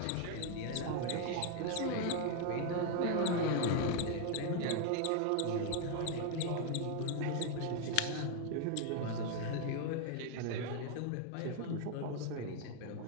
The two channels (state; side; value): different; both; correlation 0.00